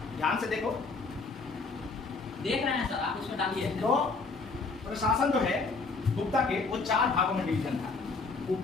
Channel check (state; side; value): quieter; right; 4.1 dB